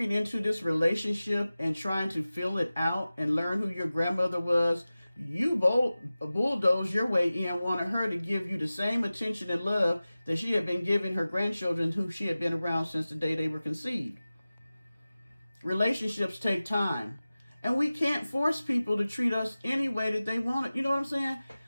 into this relationship and trying to fill it out and learn who your grandmother was, you bulldozed your way in, wanted her to give you the same attention and love that she had been giving her grandchildren who she had been around since the day they were conceived. Relationships take time. And we can't force people to treat us any way that they want it. You know what I'm saying?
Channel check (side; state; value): both; inverted; correlation -0.96